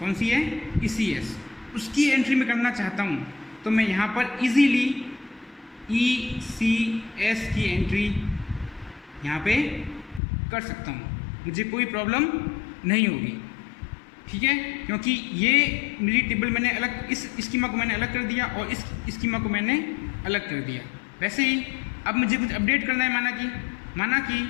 सी है, ECS, उसकी एंट्री में करना चाहता हूँ, तो मैं यहाँ पर इजीली ECS की एंट्री यहाँ पे कर सकता हूँ, मुझे कोई प्रॉब्लम नहीं होगी, ठीक है, क्योंकि ये मेरी टेबल मैंने अलग, इस स्कीमा को मैंने अलग कर दिया और इस स्कीमा को मैंने अलग कर दिया। वैसे ही अब मुझे कुछ अपडेट करना है, माना कि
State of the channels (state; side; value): drops out; right; at 10.2 s